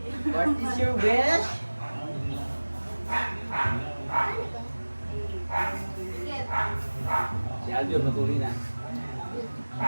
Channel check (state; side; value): inverted; both; correlation -1.00